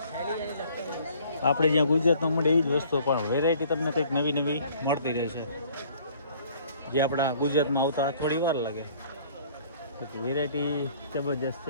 આપણે જ્યાં ગુજરાતમાં મળે એ જ વસ્તુ પણ વેરાયટી તમને કંઈક નવી નવી મળતી રહેશે. જે આપણા ગુજરાતમાં આવતા થોડી વાર લાગે પછી વેરાયટી જબરજસ્ત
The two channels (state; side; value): inverted; both; correlation -0.56